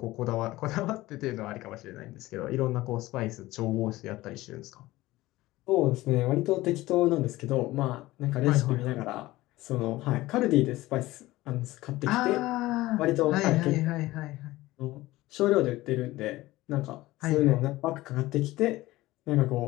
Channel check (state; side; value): quieter; right; 18.0 dB